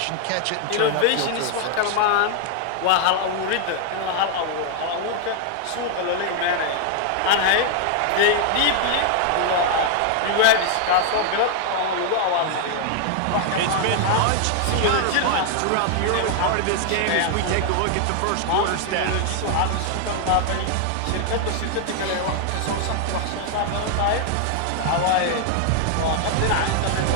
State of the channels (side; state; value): both; different; correlation 0.00